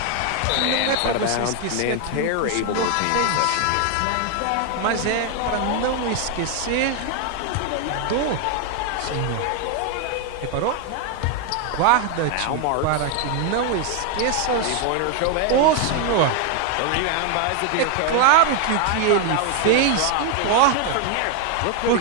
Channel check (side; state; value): both; different; correlation 0.01